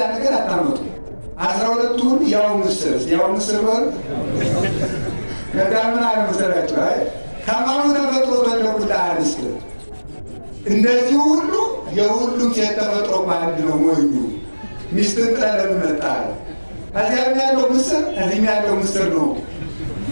ነገር አታመጡ። 12 ሁሉ ያው ምስር በል ከዛ ምን አለ መሰላችሁ? አይ ከማኑ ተፈጥሮ በለኩላ አንስት እንደዚህ ሁሉ የሁሉም ሴት ተፈጥሮ አንድ ነው። ሞኙ ሚስትን ጥለህ መጣ እዚያም ያለው ምስር እዚህም ያለው ምስር ነው።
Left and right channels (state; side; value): inverted; both; correlation -1.00